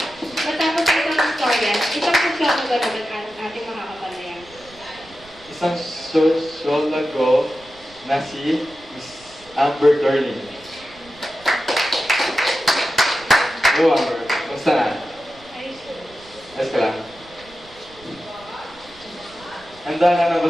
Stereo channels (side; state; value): right; noise; rumble, 24 dB below the sound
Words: Matapos itong istorya, isang sosyologo naman ang ating makakapanayan. Isang sosyologo na si Miss Amber Darling. Hello, Amber. Kumusta na? Ayos ka lang. Handa ka na ba